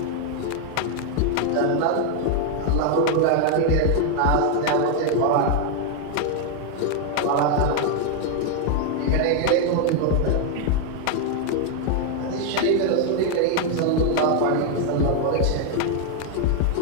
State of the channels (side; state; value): both; different; correlation 0.00